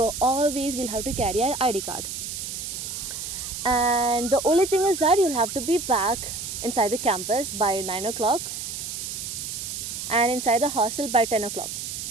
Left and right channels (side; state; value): right; noise; hiss, 6 dB below the sound